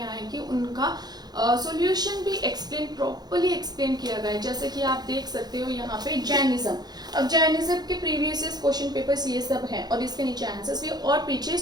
है कि उनका सॉल्यूशन भी प्रॉपर्ली एक्सप्लेन किया गया है। जैसे कि आप देख सकते हो यहाँ पे जैनिज्म, अब जैनिज्म के प्रीवियस क्वेश्चन पेपर्स ये सब हैं और इसके नीचे आंसर्स भी और पीछे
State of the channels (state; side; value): late; left; 0.19 ms